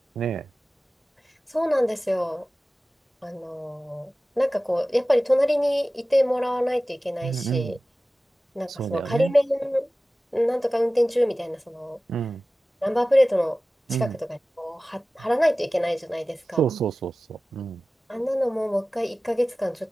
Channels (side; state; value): both; normal; correlation 0.96